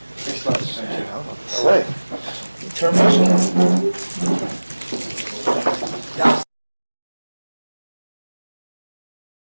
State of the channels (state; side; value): inverted; both; correlation -1.00